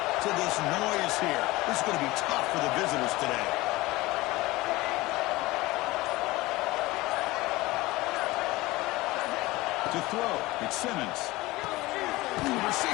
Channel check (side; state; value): right; quieter; 20.1 dB